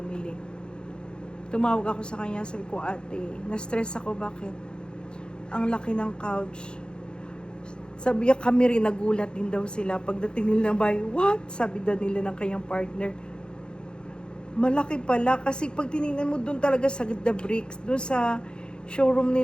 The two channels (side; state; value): right; late; 0.050 ms